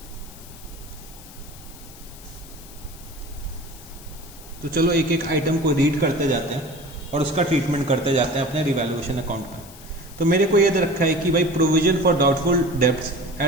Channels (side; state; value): left; noise; hiss, 19 dB below the sound